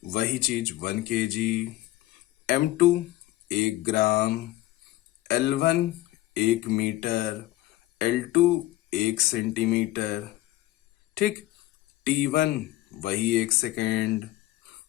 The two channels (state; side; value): quieter; right; 16.7 dB